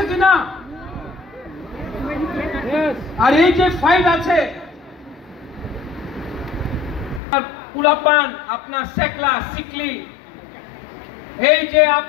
কিনা? আর এই যে ফাইট আছে পুলাপান, আপনার সেকলা সিকলি, এই যে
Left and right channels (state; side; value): drops out; right; at 7.2 s